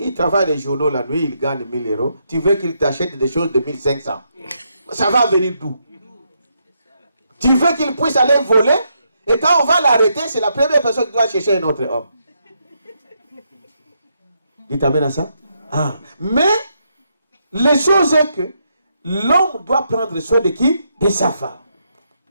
travaille les journaux la nuit, il gagne 1000 euros. Tu veux qu'il t'achète des choses de 1500. Ça va venir d'où? Tu veux qu'il puisse aller voler? Et quand on va l'arrêter, c'est la première personne qui doit chercher un autre homme. Dites amen à ça. Ah. Mais, les choses est que l'homme doit prendre soin de qui? De sa femme.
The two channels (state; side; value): inverted; both; correlation -0.79